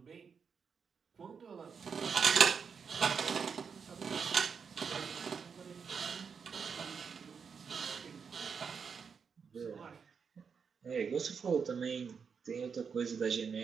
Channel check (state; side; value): quieter; left; 6.1 dB